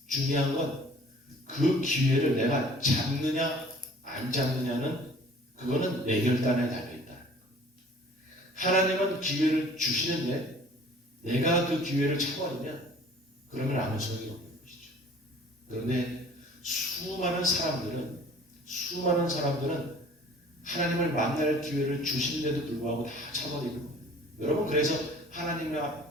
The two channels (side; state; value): both; normal; correlation 0.50